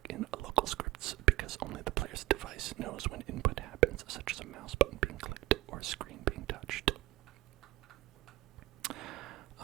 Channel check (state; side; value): quieter; left; 18.1 dB